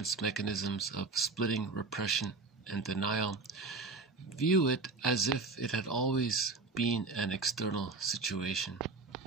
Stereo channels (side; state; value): left; quieter; 3.9 dB